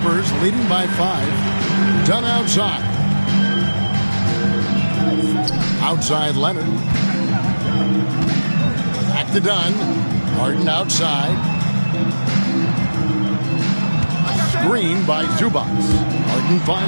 leading by 5. Dunn outside. Outside Leonard. Back to Dunn. Harden outside. Screen by Zubats. Harden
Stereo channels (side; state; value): both; inverted; correlation -1.00